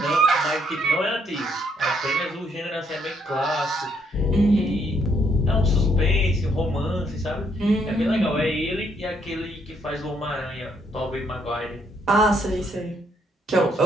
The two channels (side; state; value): both; normal; correlation 0.71